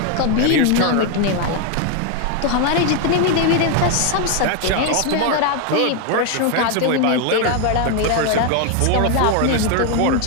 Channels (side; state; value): both; different; correlation 0.01